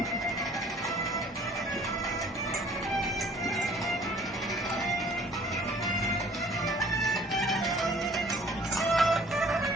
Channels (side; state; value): both; normal; correlation 0.54